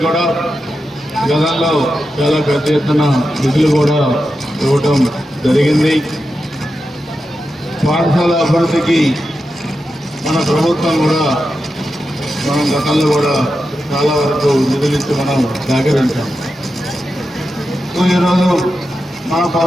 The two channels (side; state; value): both; normal; correlation 0.89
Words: కూడా గతంలో చాలా పెద్ద ఎత్తున నిధులు కూడా ఇవ్వటం జరిగింది. పాఠశాల అభివృద్ధికి మన ప్రభుత్వం కూడా మనం గతంలో కూడా చాలా వరకు నిధులు ఇచ్చి మనం సహకరించాం. సో ఈరోజు మన